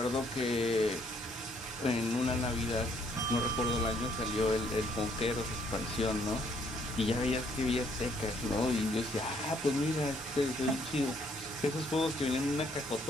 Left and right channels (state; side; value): normal; both; correlation 0.67